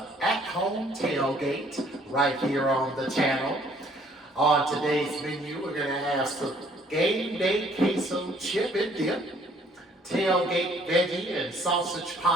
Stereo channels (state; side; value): normal; both; correlation 0.60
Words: at-home tailgate right here on the channel. On today's menu, we're going to have some Game Day queso chip and dip, tailgate veggie and sausage